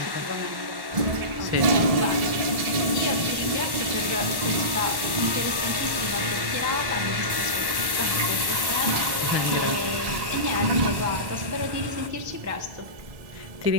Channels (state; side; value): late; left; 1.1 ms